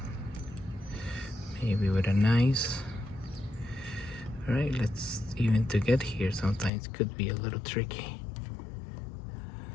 Maybe with a nice. All right, let's even to get here sometimes could be a little tricky.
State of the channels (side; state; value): right; drops out; at 6.7 s